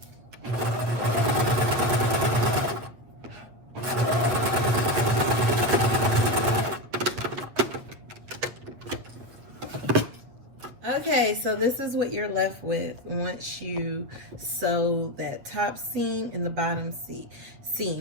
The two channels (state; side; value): late; left; 8.3 ms